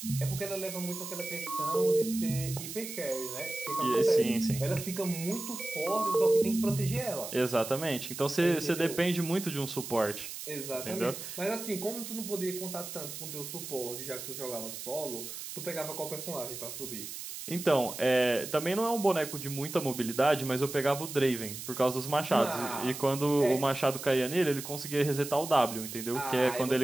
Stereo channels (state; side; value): noise; right; hiss, 9 dB below the sound